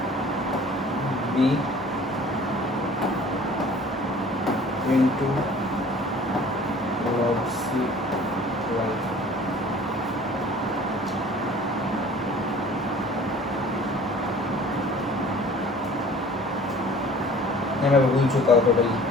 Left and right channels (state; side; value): normal; both; correlation 0.48